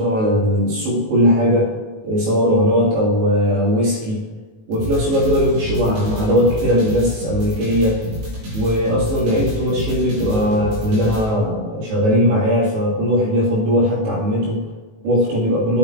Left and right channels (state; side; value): late; left; 19 ms